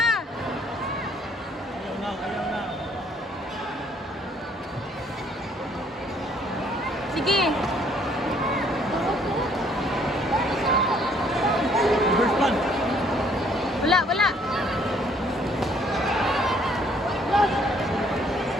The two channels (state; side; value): normal; both; correlation 0.63